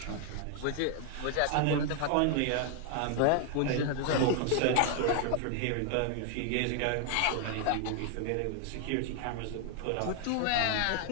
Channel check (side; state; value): both; different; correlation 0.00